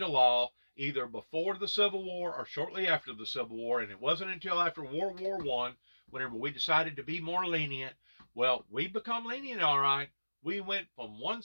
law, either before the Civil War or shortly after the Civil War. And it wasn't until after World War I, whenever we decided to be more lenient. Well, we become lenient, all right. We went from one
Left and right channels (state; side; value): inverted; both; correlation -1.00